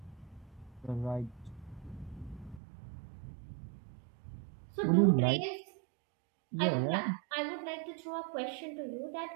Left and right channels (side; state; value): left; drops out; at 2.6 s